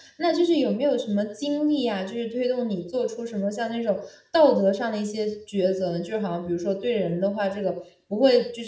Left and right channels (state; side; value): identical; both; correlation 1.00